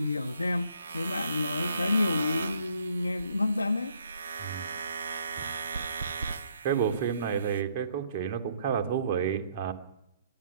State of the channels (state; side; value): inverted; both; correlation -0.67